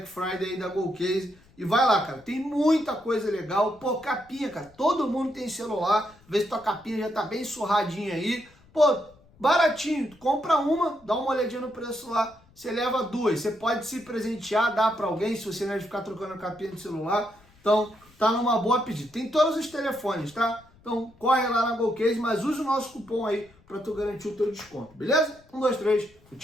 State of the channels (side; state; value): left; noise; rumble, 28 dB below the sound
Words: Friday aí da GolCase. E vai lá, cara, tem muita coisa legal. Pô, capinha, cara, todo mundo tem celular. Vê se tua capinha já tá bem surradinha aí. Pô, baratinho, tu compra uma, dá uma olhadinha no preço lá, você leva 2. Você pode se presentear, dar pra alguém, se você não é de ficar trocando a capinha do celular. Então, tá numa boa pedida. Tem todos os telefones, tá? Então, corre lá na GolCase, mas use o nosso cupom aí pra tu garantir o teu desconto, beleza? 1, 2, 3,